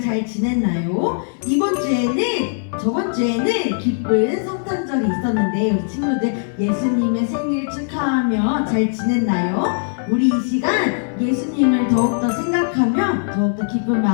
잘 지냈나요? 저번 주에는 기쁜 성탄절이 있었는데 우리 친구들 예수님의 생일 축하하며 잘 지냈나요? 우리 이 시간 예수님을 더욱더 생각하며 더욱더 기쁜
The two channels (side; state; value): right; silent; 66 dB below the other